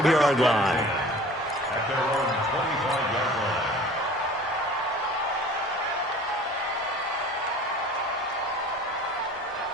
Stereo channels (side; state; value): both; normal; correlation 0.45